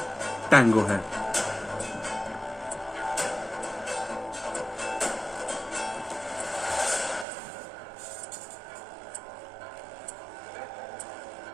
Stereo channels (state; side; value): drops out; left; at 7.2 s